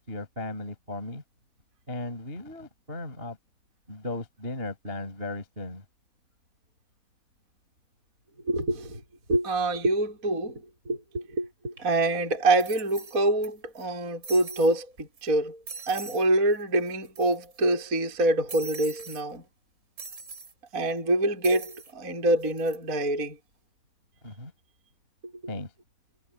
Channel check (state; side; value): late; left; 3.7 ms